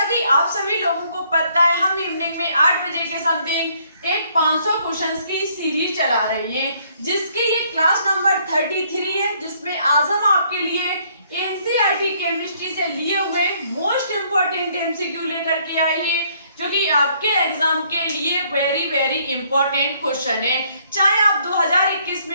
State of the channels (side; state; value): both; inverted; correlation -0.66